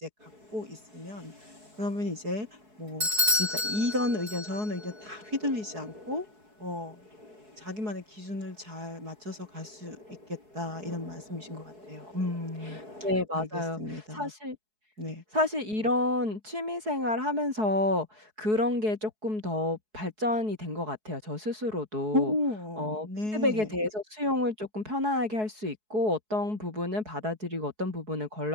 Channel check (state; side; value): late; left; 4.7 ms